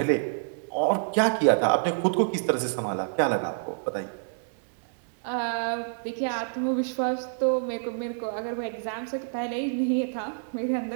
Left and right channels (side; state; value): left; silent; digital silence